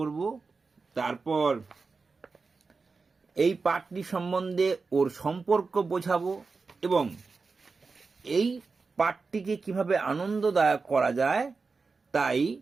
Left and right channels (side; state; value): left; quieter; 4.4 dB